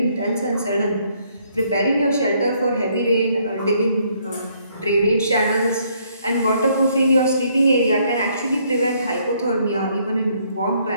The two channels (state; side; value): inverted; both; correlation -0.68